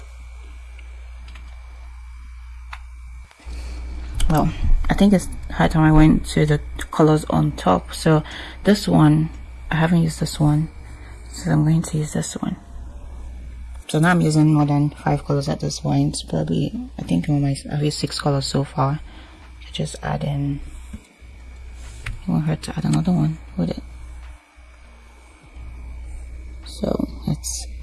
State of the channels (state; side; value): identical; both; correlation 1.00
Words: Well, I think it's high time I went to the colors on top. So this one, I haven't used this one, so I'm going to use this one. So now I'm using more than 5 colors at this point. Probably, I think I've used 6 colors so far. I just add in won't hurt to add another one with it. So let's